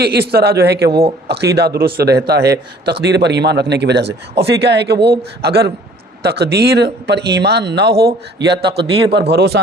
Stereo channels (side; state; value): both; normal; correlation 0.54